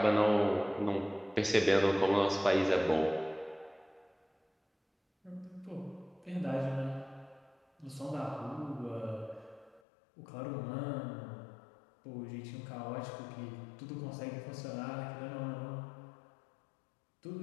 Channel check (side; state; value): right; drops out; at 9.8 s